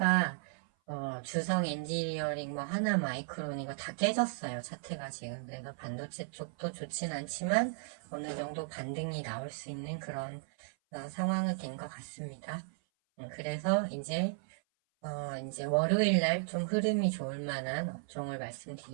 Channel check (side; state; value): left; silent; 54 dB below the other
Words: 주성 엔지니어링 뭐 하나 마이크론 이거 다 깨졌어요. 차트가 지금. 그래서 반도체 쪽도 좋진 않지만 어느 정도 반등이 나올 수 있는 그런 상황이 된 것 같습니다. 그래서 이제 월요일 날 좀 흐름이 좋을 만한 업종을